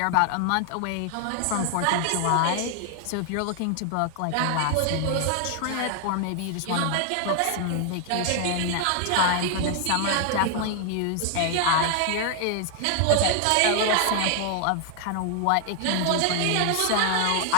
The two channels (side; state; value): both; different; correlation 0.00